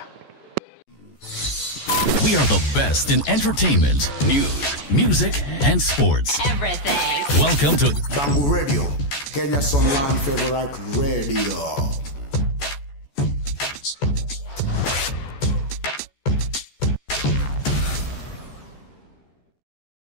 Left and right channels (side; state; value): right; late; 14 ms